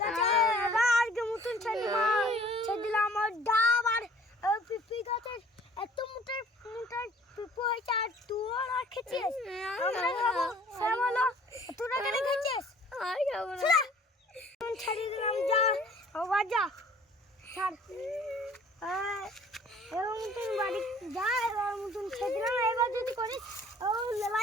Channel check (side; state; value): both; normal; correlation 0.53